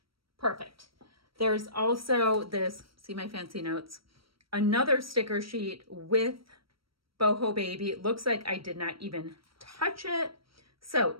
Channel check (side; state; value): left; late; 0.75 ms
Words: Perfect. There's also this, see my fancy notes, another sticker sheet with Boho Baby. It looks like I did not even touch it. So